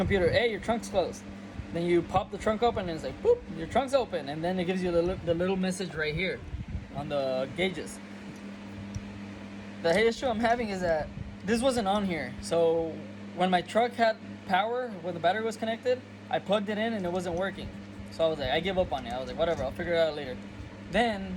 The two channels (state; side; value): identical; both; correlation 1.00